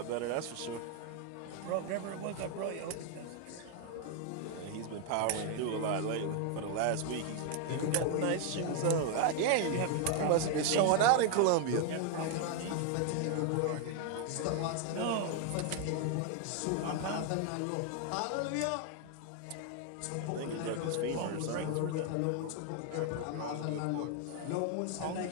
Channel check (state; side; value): different; both; correlation 0.00